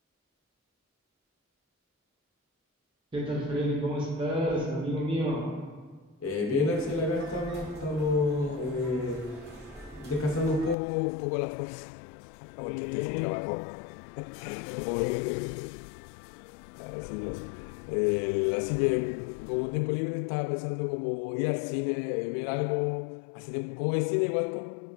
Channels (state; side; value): drops out; right; at 10.8 s